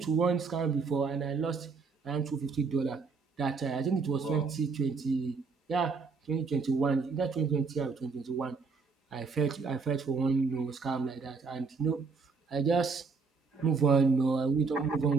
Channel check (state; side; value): quieter; left; 4.8 dB